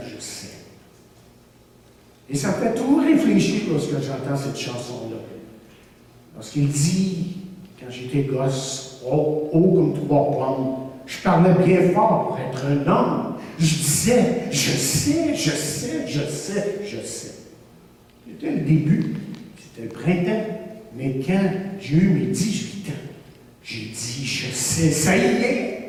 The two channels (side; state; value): both; identical; correlation 1.00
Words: je sais. Et ça me fait toujours réfléchir lorsque j'entends cette chanson-là. Lorsqu'il dit, quand j'étais gosse, haut comme 3 pommes, je parlais bien fort pour être un homme. Je disais, je sais, je sais, je sais, je sais. C'était le début, c'était le printemps. Mais quand j'ai eu mes 18 ans, j'ai dit, je sais, ça y